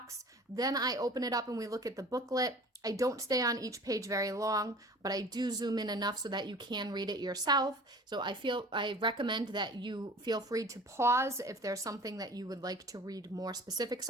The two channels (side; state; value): both; normal; correlation 0.44